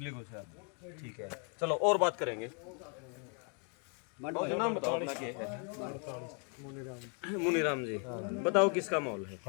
कुछ। ठीक है, चलो और बात करेंगे। और नाम बताओ अपना क्या है? मुनीराम जी, बताओ किसका माहौल है?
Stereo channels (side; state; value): right; quieter; 38.4 dB